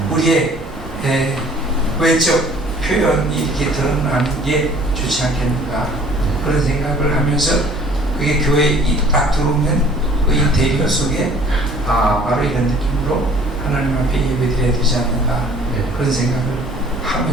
우리의 외적 표현이 이렇게 드러나는 게 좋지 않겠는가 그런 생각을 하면서 그게 교회에 딱 들어오면 그 인테리어 속에 바로 이런 느낌으로 하나님 앞에 예배드려야 되지 않는가 그런 생각을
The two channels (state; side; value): normal; both; correlation 0.53